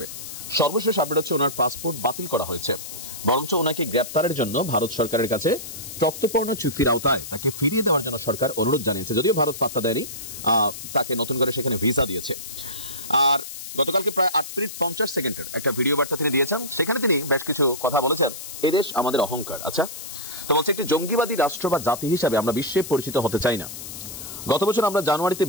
সর্বশেষ আপডেট হচ্ছে ওনার পাসপোর্ট বাতিল করা হয়েছে, বরঞ্চ ওনাকে গ্রেপ্তারের জন্য ভারত সরকারের কাছে চুক্তিপূর্ণ চুক্তির আওতায় তাকে ফিরিয়ে দেওয়ার জন্য সরকার অনুরোধ জানিয়েছে, যদিও ভারত পাত্তা দেয়নি, তাকে নতুন করে সেখানে ভিসা দিয়েছে। আর গতকালকে প্রায় 8 মিনিট 50 সেকেন্ডের একটা ভিডিও বার্তা তিনি দিয়েছেন, সেখানে তিনি বেশ কিছু কথা বলেছেন। এদেশ আমাদের অহংকার, আচ্ছা তো বলছে একটি জঙ্গিবাদী রাষ্ট্র বা জাতি হিসাবে আমরা বিশ্বে পরিচিত হতে চাই না। গত বছর আমরা জানুয়ারিতে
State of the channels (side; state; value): left; noise; hiss, 10 dB below the sound